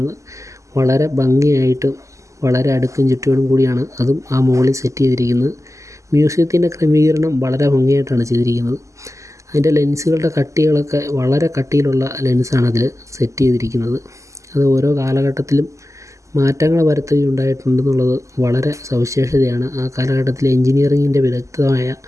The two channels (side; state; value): left; late; 0.15 ms